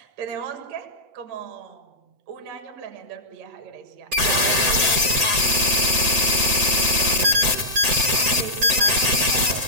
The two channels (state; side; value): late; left; 7.9 ms